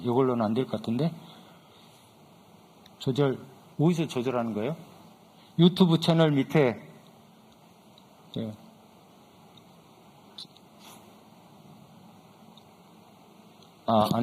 안 될 것 같은데. 어디서 조절하는 거예요? 유튜브 채널 밑에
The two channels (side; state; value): both; identical; correlation 1.00